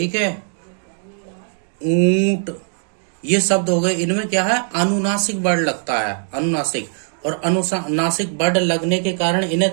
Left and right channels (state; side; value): silent; left; 56 dB below the other